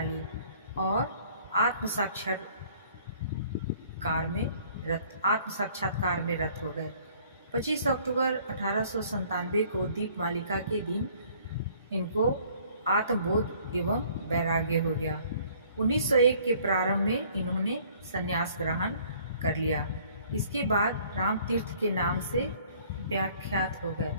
ली और आत्म साक्षात्कार में रत हो गए। 25 अक्टूबर 1897 को दीपमालिका के दिन इनको आत्मबोध एवं वैराग्य हो गया। 1901 के प्रारंभ में इन्होंने संन्यास ग्रहण कर लिया। इसके बाद राम तीर्थ के नाम से व्याख्यात हो गए,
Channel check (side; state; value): both; inverted; correlation -0.57